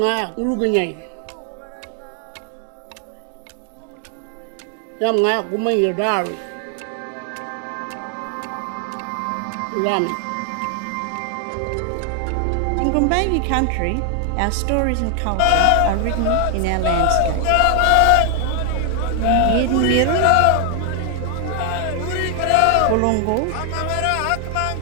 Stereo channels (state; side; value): different; both; correlation 0.00